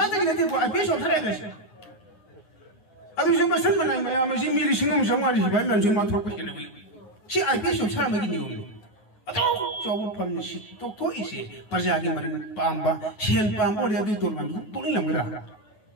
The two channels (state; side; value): late; right; 9.7 ms